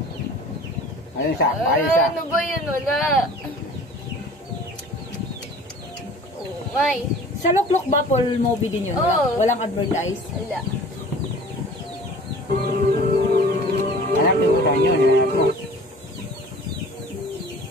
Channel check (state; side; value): normal; both; correlation 0.45